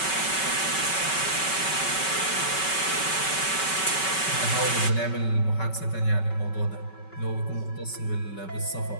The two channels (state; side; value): late; right; 5.3 ms